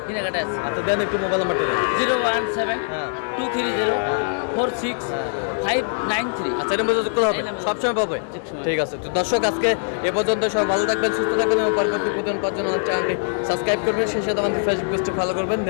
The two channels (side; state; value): right; silent; digital silence